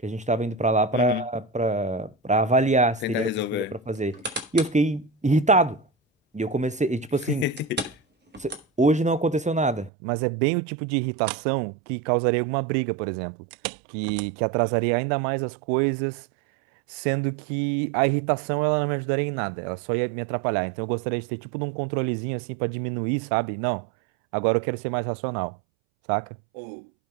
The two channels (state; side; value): drops out; left; at 9.9 s